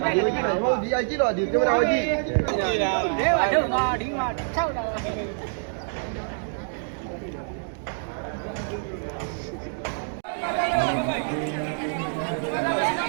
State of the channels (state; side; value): silent; left; digital silence